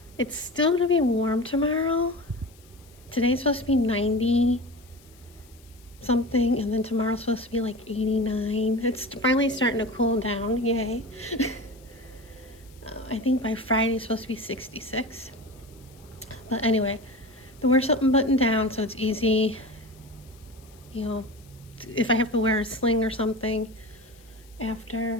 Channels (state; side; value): noise; left; hiss, 27 dB below the sound